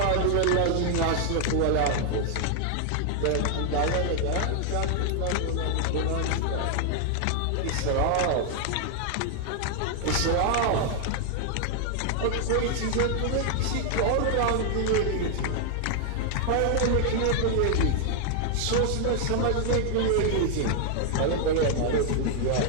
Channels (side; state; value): both; different; correlation 0.00